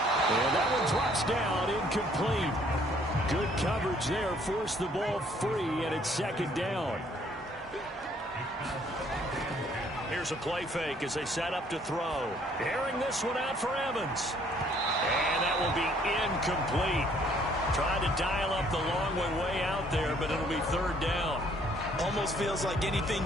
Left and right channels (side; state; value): both; normal; correlation 0.62